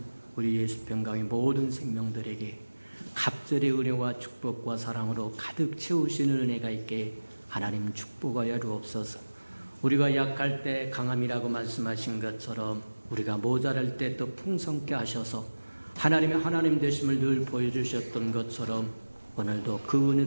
우리 예수평강의 모든 생명들에게 갑절의 은혜와 축복과 사랑으로 가득 채우시는 은혜가 있게 하나님 축복하여 주옵소서. 우리가 약할 때 강함이라고 말씀하신 것처럼 우리가 모자랄 때 또 풍성케 하셔서 하나님의 하나님 되심을 늘 보여주셨던 것처럼 오늘도 그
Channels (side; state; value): both; inverted; correlation -1.00